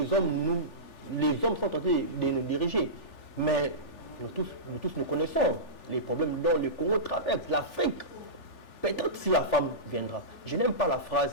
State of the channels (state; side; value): late; right; 3.4 ms